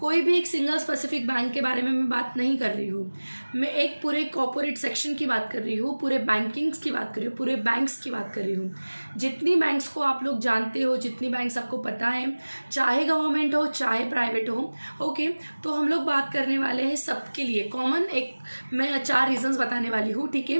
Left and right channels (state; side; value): inverted; both; correlation -1.00